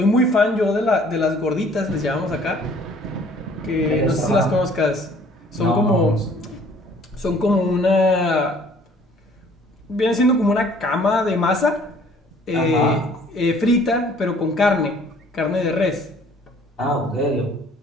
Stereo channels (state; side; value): normal; both; correlation 0.56